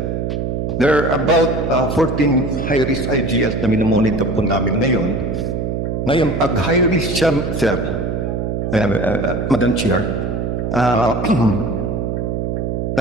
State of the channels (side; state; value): right; noise; hum, 2 dB below the sound